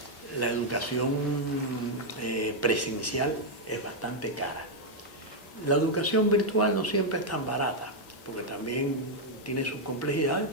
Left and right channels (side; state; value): both; normal; correlation -0.02